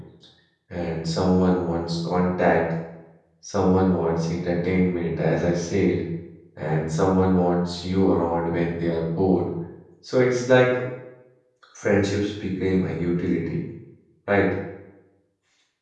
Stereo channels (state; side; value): identical; both; correlation 1.00